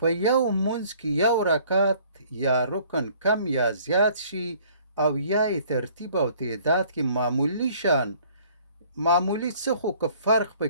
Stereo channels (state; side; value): inverted; both; correlation -0.57